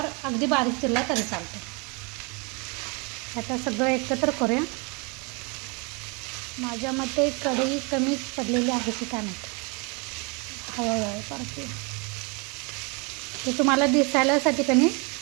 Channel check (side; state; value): left; quieter; 31.5 dB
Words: अगदी बारीक चिरला तरी चालतं. आता सगळं एकत्र करूया. माझ्या मते कढई कमी पडलेली आहे की काय माहिती, हळूहळू परतूया. ते तुम्हाला दिसायलासाठी की नाही